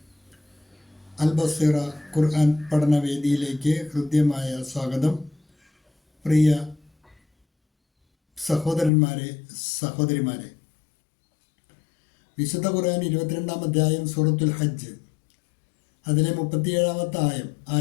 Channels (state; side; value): drops out; right; at 8.9 s